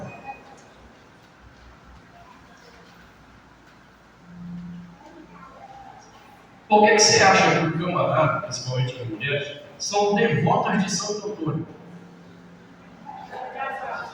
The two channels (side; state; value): both; identical; correlation 1.00